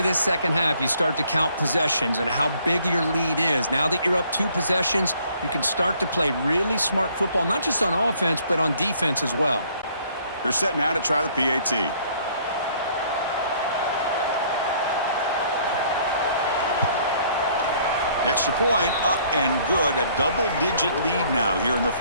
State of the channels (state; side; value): inverted; both; correlation -0.61